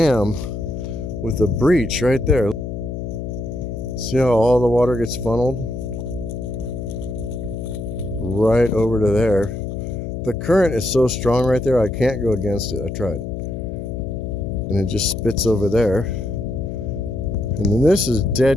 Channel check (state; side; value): noise; left; hum, 6 dB below the sound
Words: with a breach right there. See how all the water gets funneled right over to there. The current is so strong right there, I can't go against it. I tried. And it just spits over there. And then this is